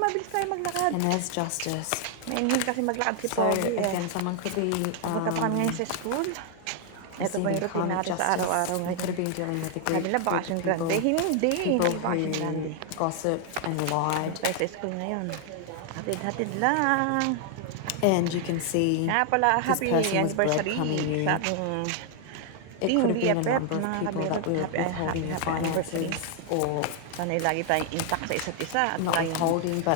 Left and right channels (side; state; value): both; different; correlation 0.00